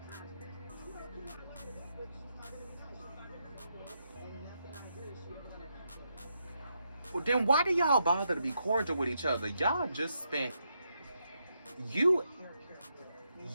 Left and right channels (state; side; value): inverted; both; correlation -0.81